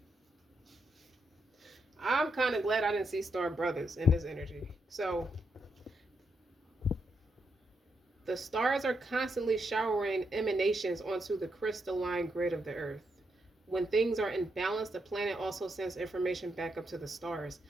I'm kind of glad I didn't see star brothers in this energy. So the stars are constantly showering emanations onto the crystalline grid of the earth. When things are in balance, the planet also sends information back up to the stars.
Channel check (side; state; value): both; normal; correlation 0.81